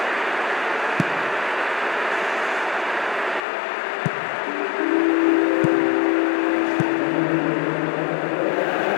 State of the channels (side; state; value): right; drops out; at 3.5 s